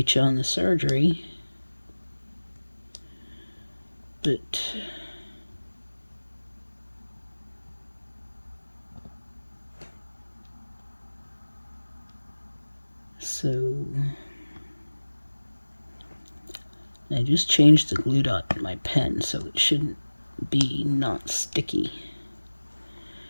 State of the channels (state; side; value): inverted; both; correlation -1.00